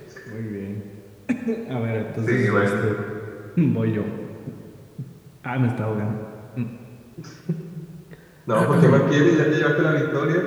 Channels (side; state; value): both; identical; correlation 1.00